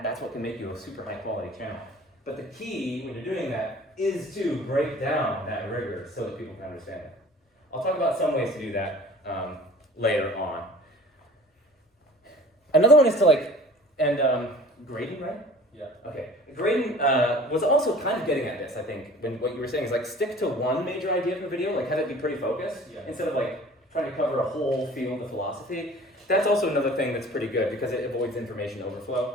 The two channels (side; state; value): both; normal; correlation 0.46